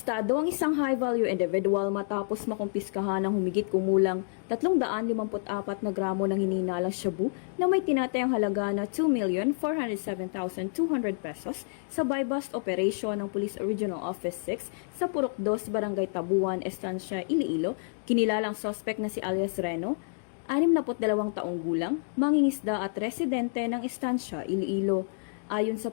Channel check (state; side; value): silent; right; digital silence